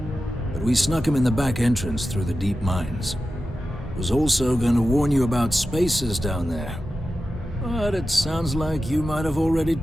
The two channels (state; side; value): normal; both; correlation 0.92